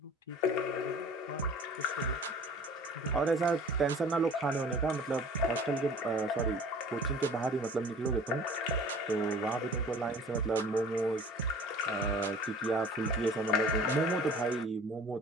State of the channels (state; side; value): normal; both; correlation 0.46